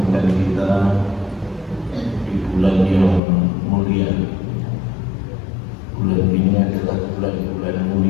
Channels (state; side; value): drops out; right; at 3.2 s